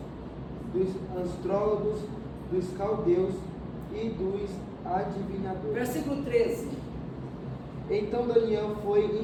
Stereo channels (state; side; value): identical; both; correlation 1.00